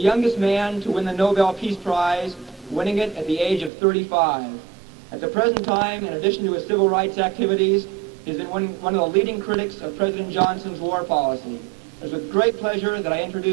man to win the Nobel Peace Prize, winning it at the age of 35. At the present time, in addition to his civil rights activities, he has been one of the leading critics of President Johnson's war policy. It is with great pleasure that I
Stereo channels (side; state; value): left; drops out; at 3.7 s